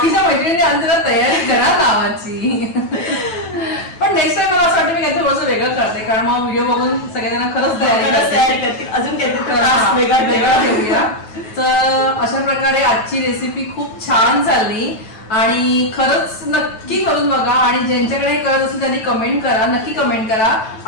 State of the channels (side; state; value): right; late; 9.2 ms